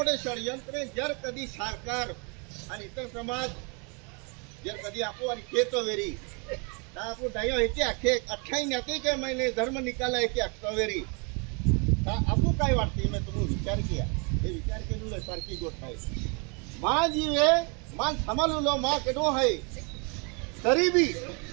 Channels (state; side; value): quieter; left; 34.0 dB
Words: षडयंत्र जर कधी सरकार आणि इतर समाज जर कधी आपो आणि केतो वेरी तर आपो डायो हेचे आखे 28 के महीने धर्म निकाला है कि अक्टोबरी आपको काय वाटते मैं तुम्हें विचार किया ये विचार के सारखी गोष्ट है माँ जीवे मन संभालू लो माँ केडो है तरी भी